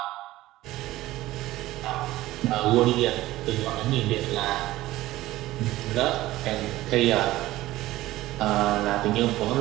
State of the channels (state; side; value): quieter; left; 16.5 dB